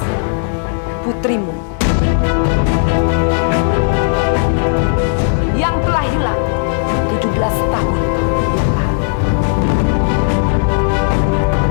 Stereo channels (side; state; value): right; silent; 70 dB below the other